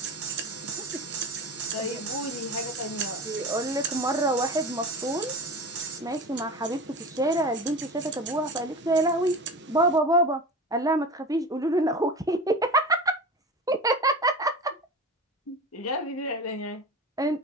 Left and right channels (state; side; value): normal; both; correlation 0.31